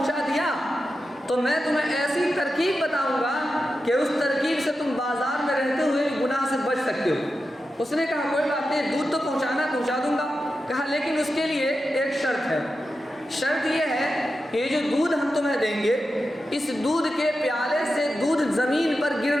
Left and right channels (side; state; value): both; normal; correlation 0.90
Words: دیا تو میں تمہیں ایسی ترکیب بتاؤں گا کہ اس ترکیب سے تم بازار میں رہتے ہوئے گناہ سے بچ سکتے ہو۔ اس نے کہا کوئی بات نہیں، دودھ تو پہنچا دوں گا۔ کہا لیکن اس کے لیے ایک شرط ہے، شرط یہ ہے کہ یہ جو دودھ ہم تمہیں دیں گے، اس دودھ کے پیالے سے دودھ زمین پر